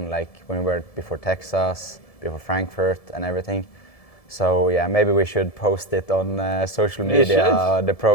like when we were before Texas, before Frankfurt and everything. So yeah, maybe we should post it on social media, the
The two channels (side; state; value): right; late; 1.7 ms